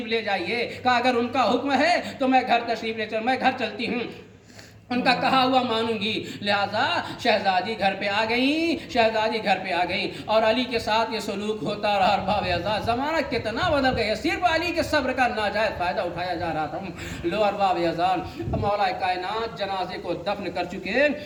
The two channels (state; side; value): identical; both; correlation 1.00